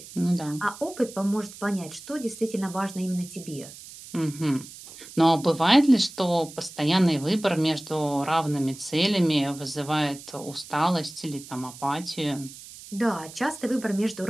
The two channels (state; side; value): noise; right; hiss, 16 dB below the sound